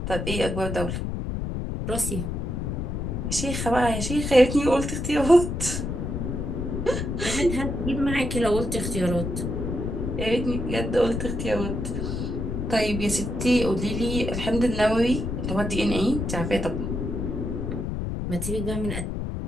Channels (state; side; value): noise; left; rumble, 3 dB below the sound